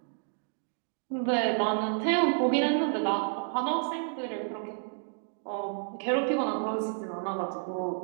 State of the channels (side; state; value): left; silent; 58 dB below the other